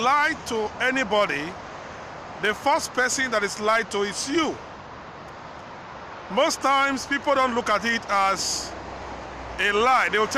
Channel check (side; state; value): both; identical; correlation 1.00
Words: to anybody, the first person that is lied to is you. Most times, people don't look at it as a lie. They will